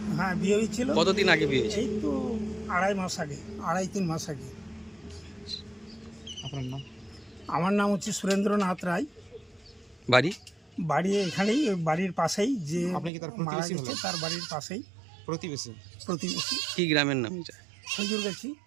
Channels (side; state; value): left; drops out; at 13.1 s